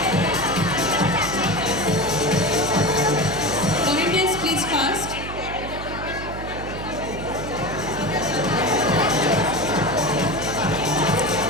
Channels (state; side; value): noise; right; hum, 9 dB below the sound